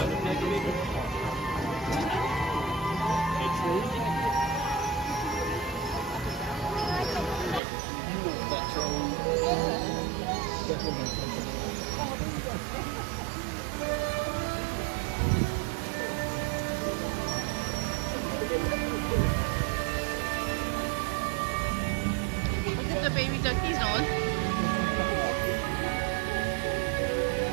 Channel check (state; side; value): drops out; left; at 7.6 s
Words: The baby ducky's on.